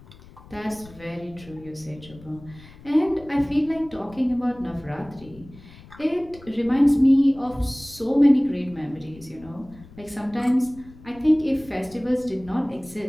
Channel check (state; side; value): noise; left; rumble, 21 dB below the sound